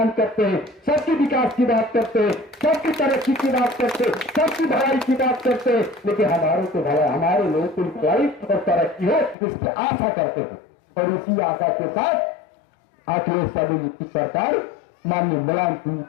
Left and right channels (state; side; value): drops out; right; at 9.3 s